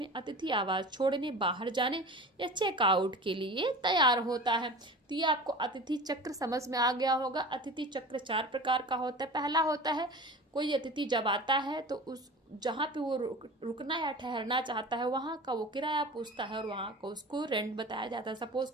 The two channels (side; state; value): both; normal; correlation 0.36